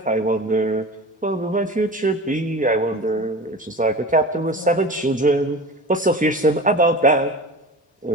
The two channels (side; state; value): both; normal; correlation 0.34